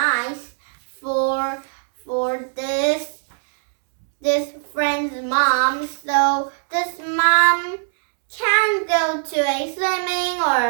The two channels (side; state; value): left; silent; 65 dB below the other